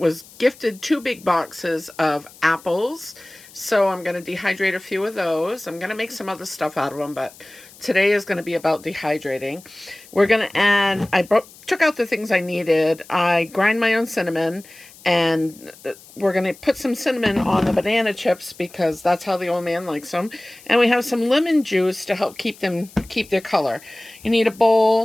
gifted 2 big boxes of apples, so I'm going to dehydrate a few of those. I'm going to make some other stuff out of them, but today is going to be about dehydrating. We're going to add, took out the things I needed. I grind my own cinnamon, and we're going to put some cinnamon on the banana chips because that's how the old man likes them. And we have some lemon juice to help keep their color. You need a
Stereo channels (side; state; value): left; noise; hiss, 22 dB below the sound